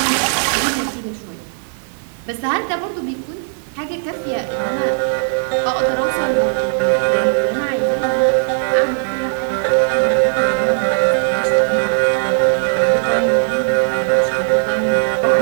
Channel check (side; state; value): left; silent; digital silence